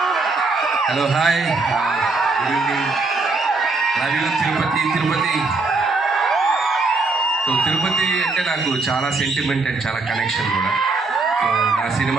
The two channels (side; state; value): left; quieter; 3.7 dB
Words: Hello, hi, good evening. Love you Tirupati. So Tirupati అంటే నాకు చాలా సెంటిమెంట్ అండ్ చాలా కనెక్షన్ కూడా. సో నా